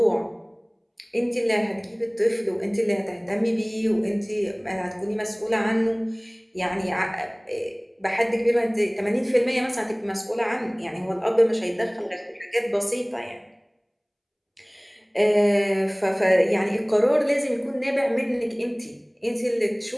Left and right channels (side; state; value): both; identical; correlation 1.00